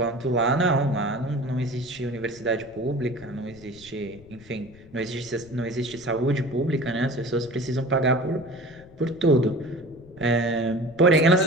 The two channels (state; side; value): noise; left; rumble, 22 dB below the sound